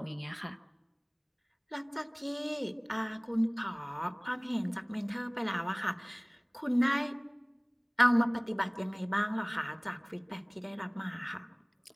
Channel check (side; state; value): both; identical; correlation 1.00